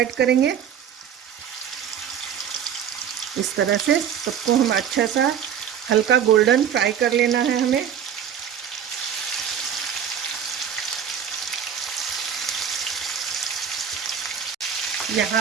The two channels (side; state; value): left; quieter; 8.5 dB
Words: करेंगे। इस तरह से सबको हम अच्छा सा हल्का गोल्डन फ्राई कर लेना है हमें। यहाँ